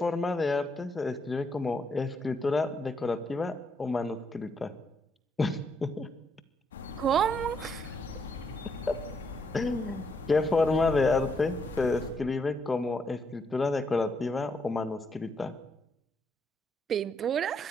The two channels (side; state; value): both; normal; correlation 0.76